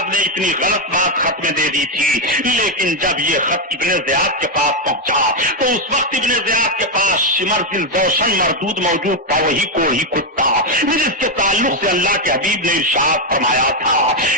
نے اتنی غلط بات خط میں دے دی تھی، لیکن جب یہ خط ابن زیاد کے پاس پہنچا تو اس وقت ابن زیاد کے پاس شمر ذی الجوشن مردود موجود تھا، وہی کوڑی کتا جس کے تعلق سے اللہ کے حبیب نے ارشاد فرمایا تھا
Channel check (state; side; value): normal; both; correlation 0.04